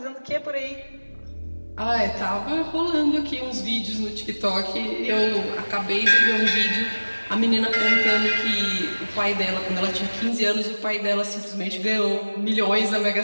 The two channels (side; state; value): both; inverted; correlation -1.00